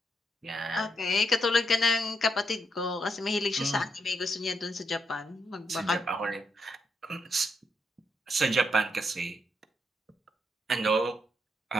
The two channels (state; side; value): normal; both; correlation 0.79